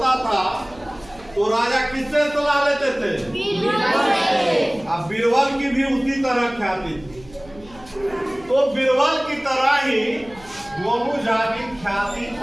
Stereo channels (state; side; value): noise; right; hum, 23 dB below the sound